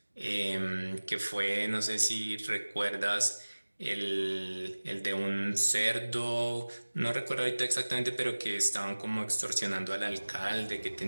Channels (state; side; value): inverted; both; correlation -1.00